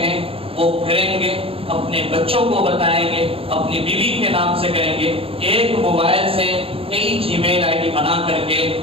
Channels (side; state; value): left; late; 0.27 ms